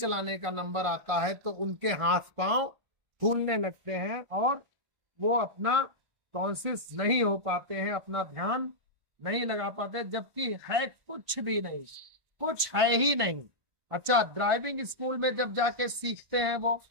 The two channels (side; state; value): left; late; 1.5 ms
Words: का नंबर आता है तो उनके हाथ पांव फूलने लगते हैं और वो अपना कॉन्शियस नहीं हो पाते हैं, अपना ध्यान नहीं लगा पाते, जबकि है कुछ भी नहीं, कुछ है ही नहीं। अच्छा, ड्राइविंग स्कूल में जब जाके सीखते हैं वो,